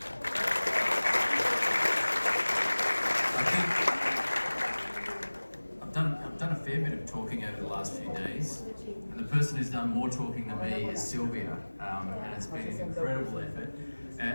I think I've done a fair bit of talking over the last few days, and the person who's done more talking than me is Sylvia, and it's been an incredible effort.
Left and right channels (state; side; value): inverted; both; correlation -1.00